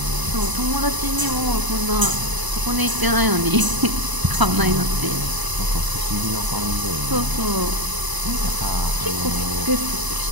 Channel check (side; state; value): left; late; 1.0 ms